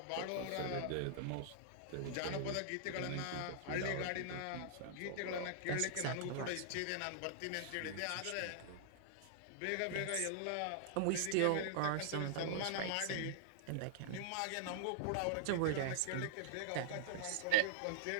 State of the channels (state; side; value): different; both; correlation -0.01